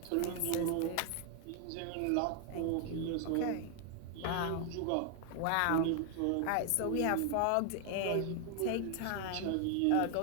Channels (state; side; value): different; both; correlation 0.00